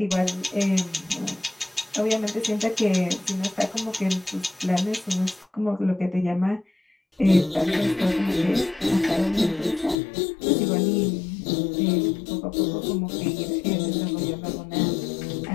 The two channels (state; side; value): drops out; right; at 10.0 s